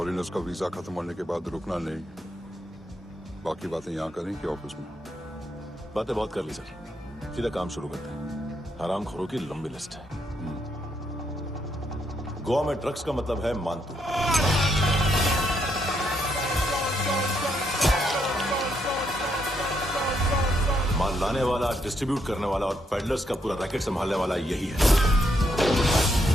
का वीजा खत्म होने के बाद रुकना नहीं। बाकी बातें यहाँ करें कि ऑफिस में? बातें बहुत कर ली सर, सीधा काम शुरू करते हैं। हरामखोरों की लंबी लिस्ट है। गोवा में ड्रग्स का मतलब है मानतू। माल लाने वाला, डिस्ट्रीब्यूट करने वाला और पेडलर्स का पूरा रैकेट संभालने वाला यही है।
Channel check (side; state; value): both; normal; correlation 0.76